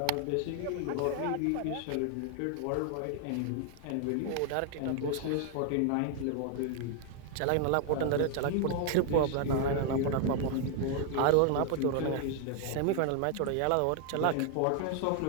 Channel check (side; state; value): both; different; correlation 0.00